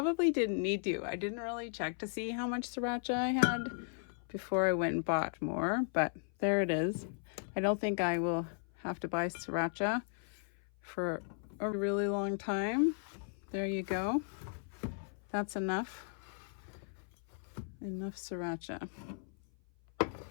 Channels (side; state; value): right; silent; 54 dB below the other